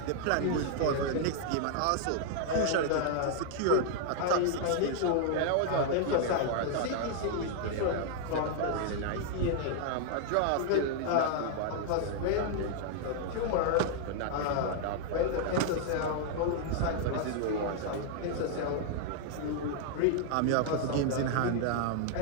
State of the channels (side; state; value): both; different; correlation 0.00